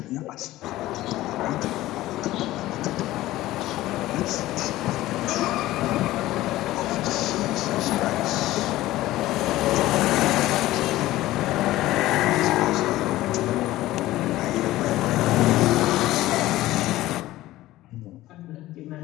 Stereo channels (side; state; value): right; quieter; 16.3 dB